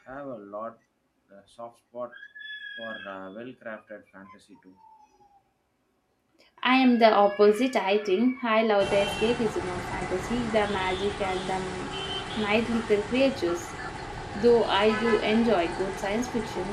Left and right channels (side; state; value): both; identical; correlation 1.00